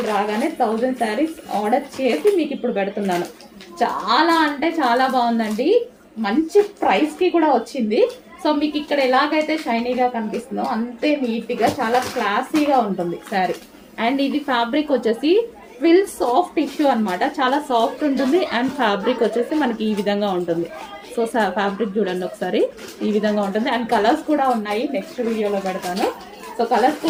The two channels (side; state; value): both; identical; correlation 1.00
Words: రాగానే 1000 శారీస్ ఆర్డర్ చేసి మీకు ఇప్పుడు పెడుతున్నాను. చాలా అంటే చాలా బాగుందండి. మంచి ప్రైస్కి కూడా వచ్చింది. సో మీకు ఇక్కడ ఎలాగైతే షైనీగా కనిపిస్తుందో అంతే నీట్గా చాలా క్లాసీగా ఉంటుంది శారీ. అండ్ ఇది ఫ్యాబ్రిక్ వచ్చేసి ట్విల్ సాఫ్ట్ టిష్యూ అనమాట. చాలా సాఫ్ట్ ఉంటుంది. అండ్ ఫ్యాబ్రిక్ వచ్చేసి మనకి ఈ విధంగా ఉంటుంది. సో ఫ్యాబ్రిక్ చూడండి ఒకసారి, ఈ విధంగా ఉంటుంది. అండ్ కలర్స్ కూడా ఉన్నాయి, నెక్స్ట్ వీడియోలో పెడతాను. సో కలర్స్